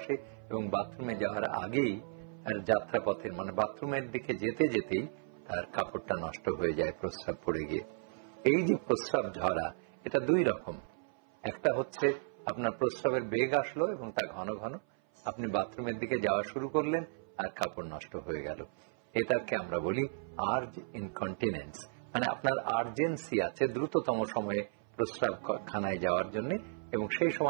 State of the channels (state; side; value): silent; left; 55 dB below the other